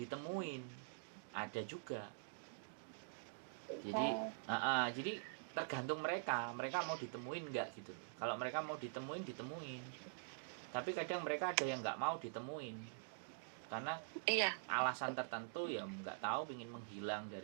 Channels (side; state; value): left; quieter; 38.5 dB